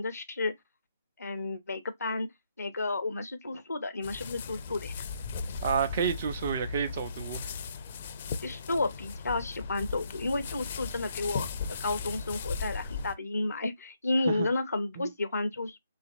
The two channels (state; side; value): inverted; both; correlation -0.75